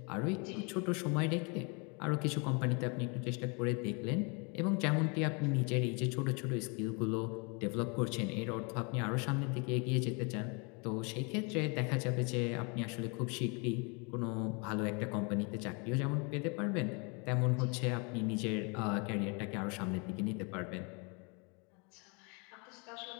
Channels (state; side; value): quieter; right; 32.8 dB